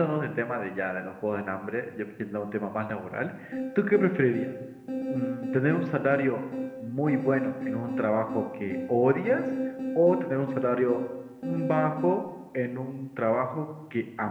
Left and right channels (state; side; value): identical; both; correlation 1.00